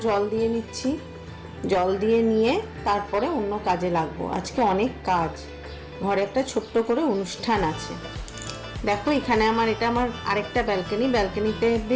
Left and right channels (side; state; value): both; identical; correlation 1.00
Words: জল দিয়ে নিচ্ছি। জল দিয়ে নিয়ে তারপরে অন্য কাজে লাগবো। আজকে অনেক কাজ, ঘরে একটা ছোট্ট করে অনুষ্ঠান আছে। দেখো এখানে এটা আমার আরেকটা ব্যালকনিতে